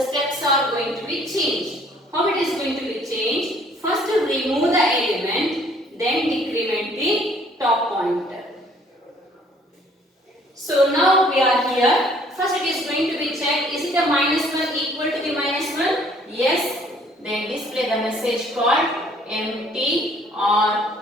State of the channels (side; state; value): both; normal; correlation 0.59